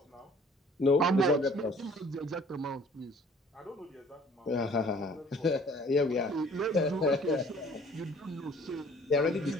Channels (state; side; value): normal; both; correlation 0.54